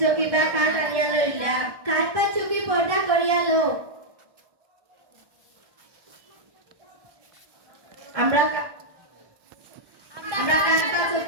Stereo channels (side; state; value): left; late; 1.2 ms